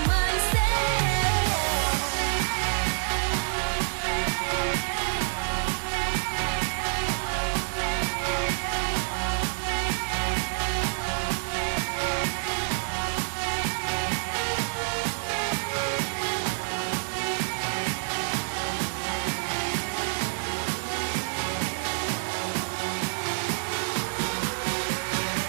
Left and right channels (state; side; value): silent; left; digital silence